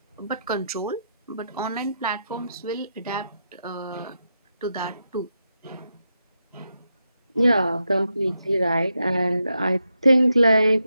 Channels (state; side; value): inverted; both; correlation -0.85